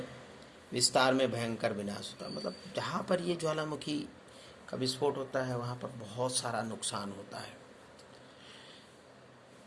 विस्तार में भयंकर विनाश होता है। मतलब जहाँ पर ये ज्वालामुखी का विस्फोट होता है वहाँ पर बहुत सारा नुकसान होता है।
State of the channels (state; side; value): identical; both; correlation 1.00